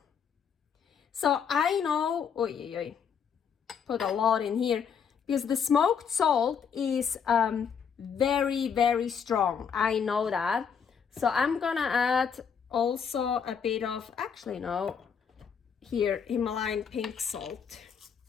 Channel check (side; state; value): right; quieter; 7.0 dB